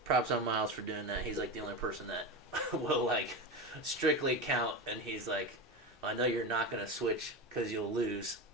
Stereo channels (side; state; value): both; normal; correlation 0.21